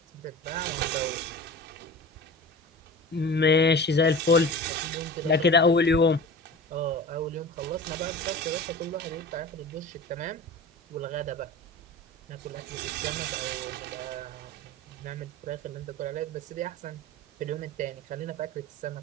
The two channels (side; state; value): both; normal; correlation 0.35